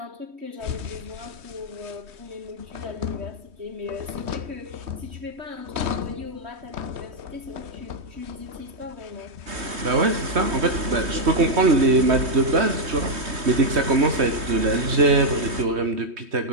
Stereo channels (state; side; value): late; left; 3.2 ms